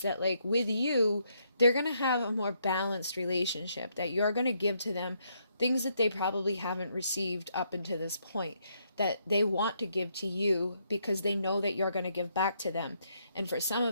that like with you, they're going to have a more balanced relationship, that you're going to give to them things that they probably haven't received up until this point, that they want to give to you because they know that you're going to give back to them. And for some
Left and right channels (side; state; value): both; inverted; correlation -0.74